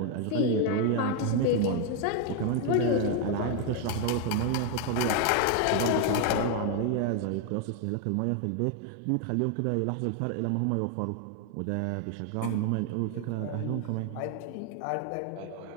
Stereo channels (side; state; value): both; different; correlation 0.01